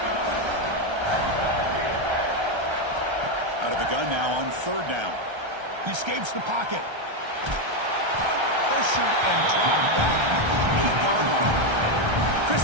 Out of the gun now on third down. He escapes the pocket. Pressured and dropped back at the 8-yard line. Chris,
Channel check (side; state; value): left; late; 1.3 ms